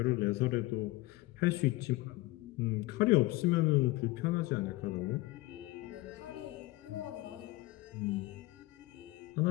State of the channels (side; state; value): right; quieter; 19.9 dB